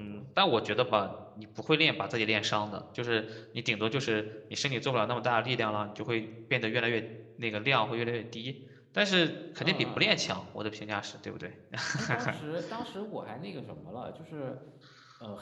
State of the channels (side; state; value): both; identical; correlation 1.00